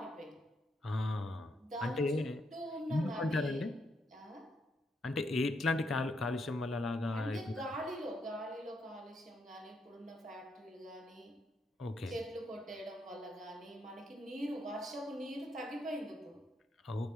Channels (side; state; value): both; normal; correlation 0.78